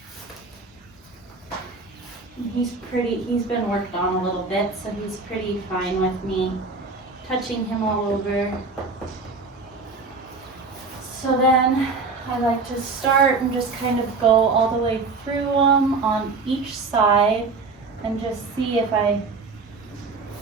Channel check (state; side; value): quieter; left; 4.1 dB